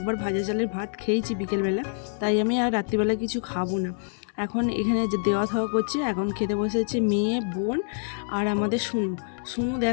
ভাজা চালের ভাত খেয়েছি বিকেলবেলা, তাই আমি আর রাত্রিবেলা কিছু খাবো না। এখন এখানে যে দেওয়া থাওয়া করছে, এখন খেতে বসেছে মেয়ে, বোন আর আমাদের শুনু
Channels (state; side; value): silent; right; digital silence